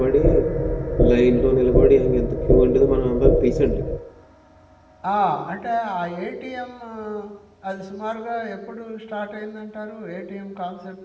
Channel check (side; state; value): both; identical; correlation 1.00